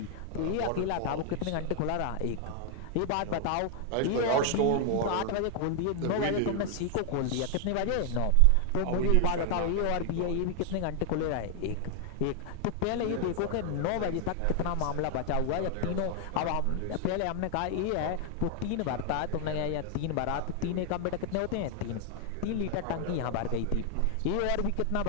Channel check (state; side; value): different; both; correlation 0.00